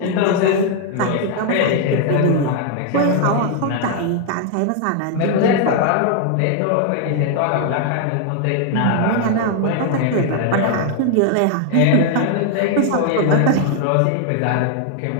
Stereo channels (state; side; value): different; both; correlation 0.00